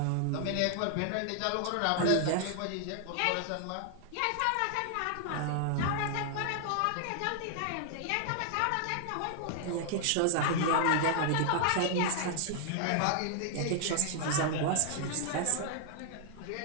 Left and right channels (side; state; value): both; different; correlation 0.00